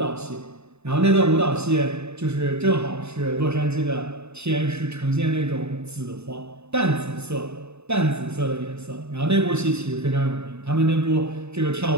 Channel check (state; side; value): late; left; 0.81 ms